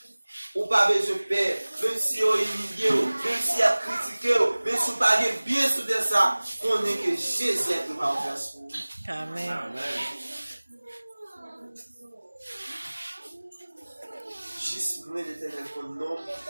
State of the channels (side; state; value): both; inverted; correlation -1.00